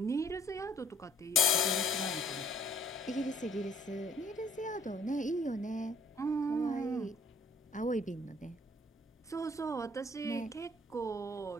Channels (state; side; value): normal; both; correlation 0.59